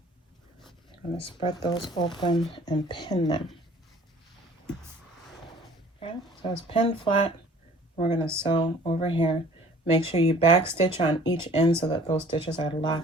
I'm gonna spread those open and pin them. Okay, so it's pinned flat. We're gonna sew over here. Make sure you back stitch on each end so that those stitches are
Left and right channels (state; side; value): normal; both; correlation 0.51